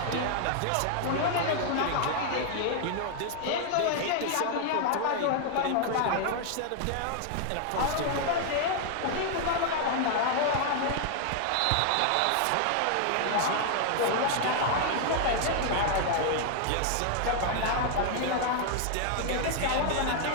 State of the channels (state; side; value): different; both; correlation 0.00